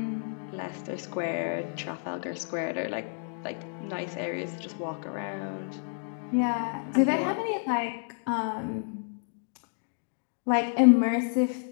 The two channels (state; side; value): silent; right; 58 dB below the other